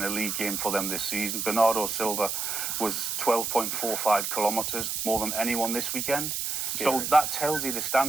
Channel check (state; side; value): noise; right; hiss, 2 dB below the sound